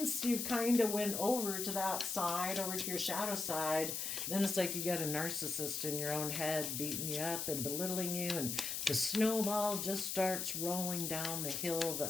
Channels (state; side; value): noise; left; hiss, 2 dB below the sound